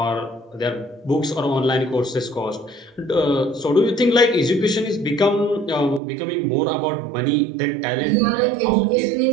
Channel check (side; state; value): left; drops out; at 6.0 s